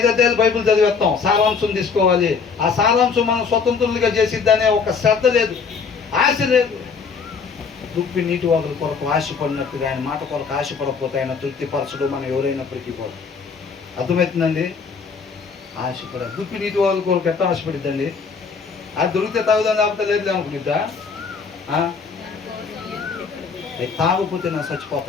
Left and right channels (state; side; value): quieter; right; 5.4 dB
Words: అధ్యాయాలు బైబిల్ చదివేస్తాం, సారాంశం తీసుకోవాలి, ఆ సారాంశం మనం స్వతంత్రులుగా చేసిద్దనే ఒక శ్రద్ధ లేదు, ఆశ లేదు. దుప్పి నీటి వాదుల కొరకు ఆశపడినట్టుగా ఆయన మాట కొరకు ఆశపడకపోతే ఆయన తృప్తిపరచడు మనం ఎవరైనప్పటికీ కూడా. అర్థమవుతుందండి? ఆశపడ దుప్పి నీటి వాదుల కొరకు ఎట్లా ఆశపడిద్దండి? అది దొరికితే తాగుదాం, లేకపోతే లేదు అనుకునిద్దా? తాగకపోతే నా